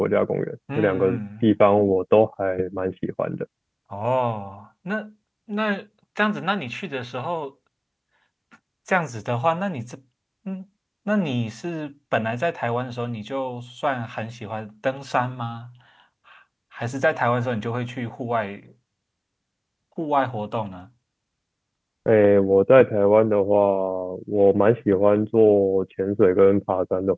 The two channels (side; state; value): both; identical; correlation 1.00